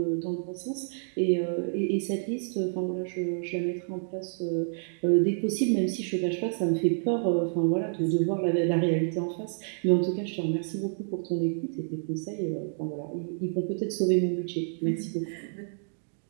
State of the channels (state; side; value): silent; left; digital silence